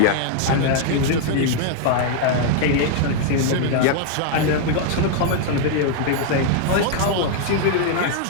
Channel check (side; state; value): both; different; correlation 0.00